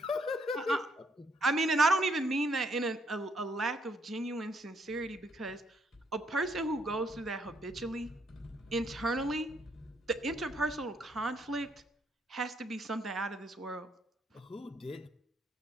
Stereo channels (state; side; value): normal; both; correlation 0.71